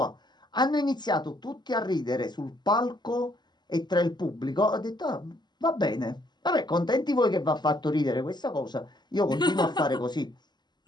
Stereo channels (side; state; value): right; late; 0.21 ms